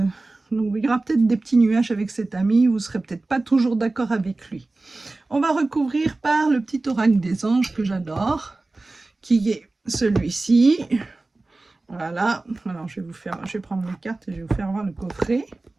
donc il y aura peut-être des petits nuages avec cet ami, vous ne serez peut-être pas toujours d'accord avec lui. On va recouvrir par le petit oracle des anges que j'adore, qui est celui-ci. Voilà, alors je vais prendre les cartes et je vais vous faire voir le coffret.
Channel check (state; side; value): quieter; left; 3.2 dB